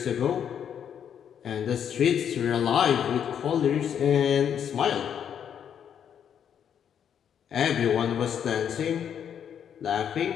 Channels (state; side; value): quieter; right; 8.6 dB